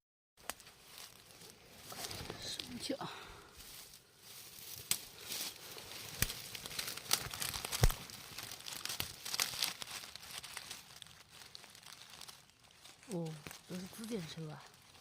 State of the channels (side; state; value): both; identical; correlation 1.00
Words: 什么叫？哦，都是紫箭手啊！